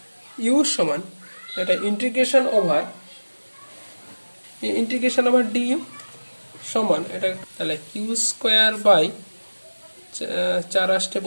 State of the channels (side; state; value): both; inverted; correlation -1.00